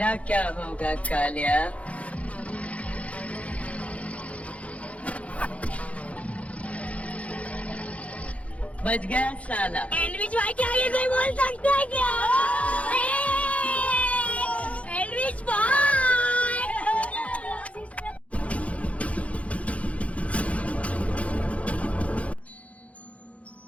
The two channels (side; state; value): right; late; 0.065 ms